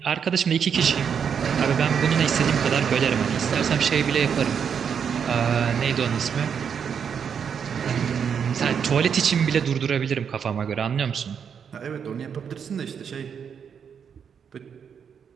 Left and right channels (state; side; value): quieter; left; 7.2 dB